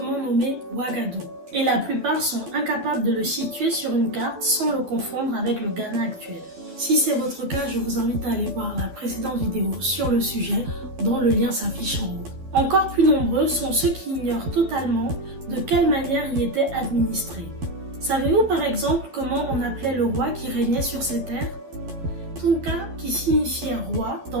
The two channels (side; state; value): left; late; 11 ms